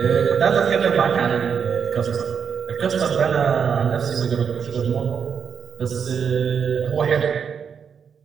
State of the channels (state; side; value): quieter; left; 6.9 dB